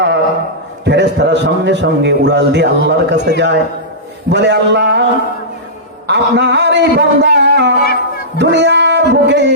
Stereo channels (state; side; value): normal; both; correlation -0.15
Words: ফেরেশতারা সঙ্গে সঙ্গে উড়াল দিয়ে আল্লাহর কাছে যায়, বলে আল্লাহ আপনার এই বান্দা দুনিয়ার বুকে